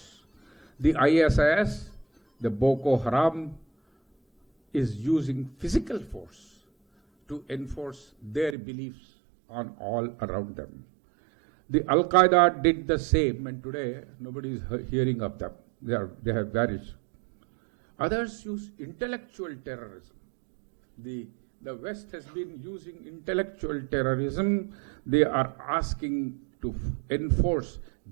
The ISIS, the Boko Haram, is using physical force to enforce their beliefs on all around them. The Al-Qaeda did the same, and today nobody is hearing of them. They have vanished. Others use intellectual terrorism. The West has been using intellectual terrorism. They are asking to enforce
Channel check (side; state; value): left; drops out; at 8.6 s